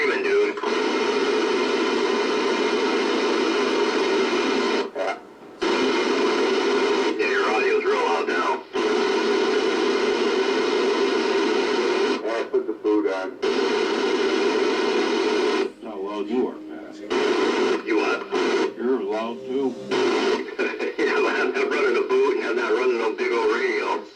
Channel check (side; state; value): both; identical; correlation 1.00